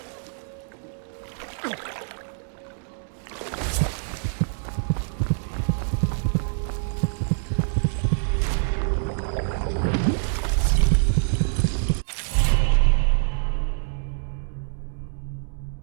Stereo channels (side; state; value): left; silent; digital silence